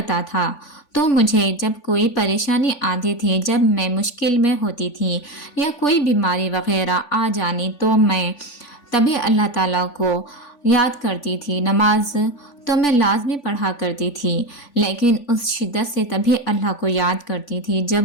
تھا تو مجھے جب کوئی پریشانی آتی تھی، جب میں مشکل میں ہوتی تھی یا کوئی بیماری وغیرہ آ جانی تو میں تبھی اللہ تعالیٰ کو یاد کرتی تھی۔ نماز تو میں لازمی پڑھا کرتی تھی، لیکن اس شدت سے تبھی اللہ کو یاد کرتی تھی جب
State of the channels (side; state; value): right; late; 3.5 ms